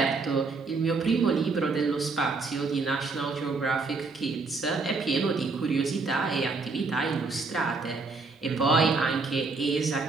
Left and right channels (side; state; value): left; quieter; 4.0 dB